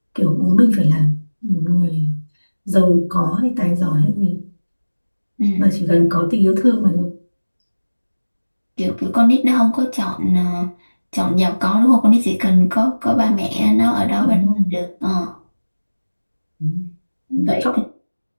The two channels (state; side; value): inverted; both; correlation -1.00